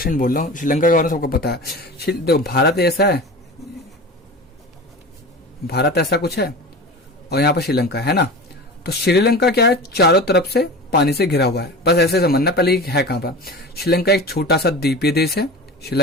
बोल रहा हूँ, श्रीलंका के बारे में सबको पता है। देखो भारत ऐसा है, भारत ऐसा कुछ है और यहाँ पर श्रीलंका है ना। तो श्रीलंका क्या है, चारों तरफ से पानी से घिरा हुआ है, बस ऐसे समझना। पहले है कहाँ पर, श्रीलंका एक छोटा सा द्वीपीय देश है।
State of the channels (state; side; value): normal; both; correlation 0.32